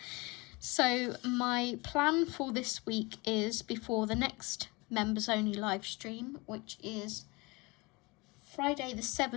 So my plan for this week is, before the next members only live stream, which is Friday the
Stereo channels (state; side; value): quieter; right; 25.5 dB